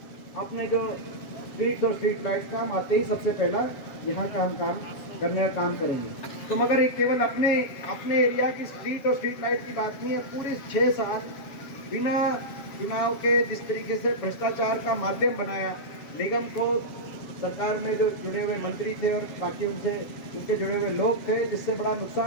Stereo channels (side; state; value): right; late; 7.5 ms